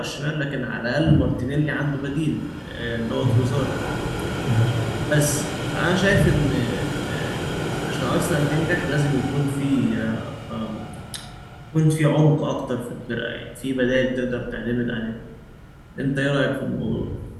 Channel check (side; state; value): both; identical; correlation 1.00